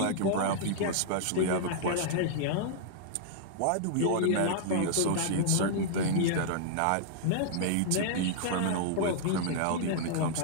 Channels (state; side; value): different; both; correlation -0.01